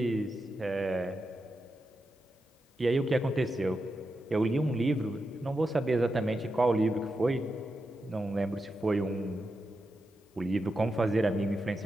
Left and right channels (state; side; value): normal; both; correlation 0.88